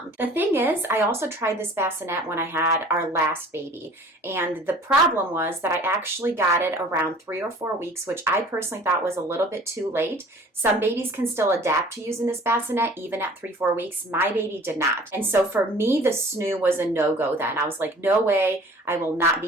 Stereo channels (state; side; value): normal; both; correlation 0.49